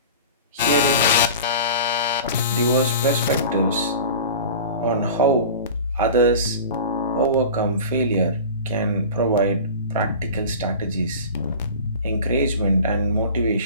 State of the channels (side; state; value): both; inverted; correlation -0.37